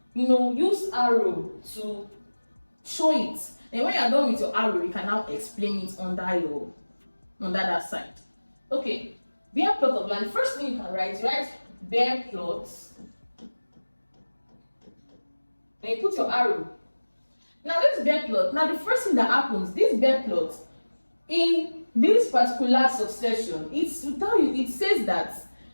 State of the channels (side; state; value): both; inverted; correlation -1.00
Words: use arrow to show it. And when you're done with your arrow, you can now explain it under that side. Okay, bare plot of land. First thing you can write bare plots. Then you put your arrow. Now this bare plot. Now the first thing that happens, this bare plot, in this particular succession, it's to tell you. It says that